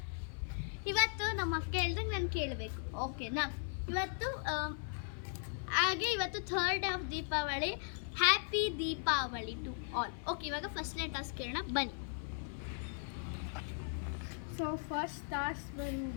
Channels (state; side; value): silent; right; 52 dB below the other